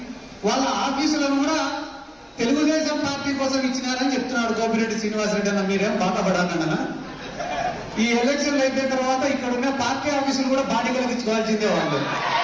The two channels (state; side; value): identical; both; correlation 1.00